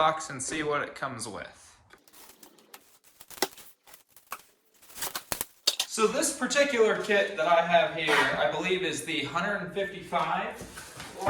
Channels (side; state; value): both; identical; correlation 1.00